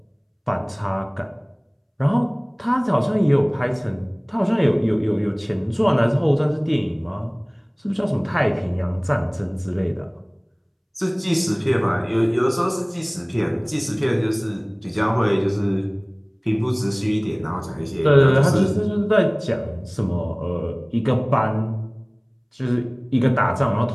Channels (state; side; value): identical; both; correlation 1.00